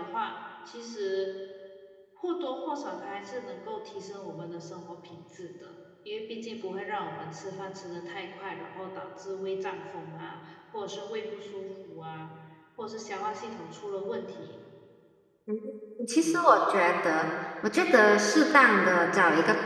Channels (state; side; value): identical; both; correlation 1.00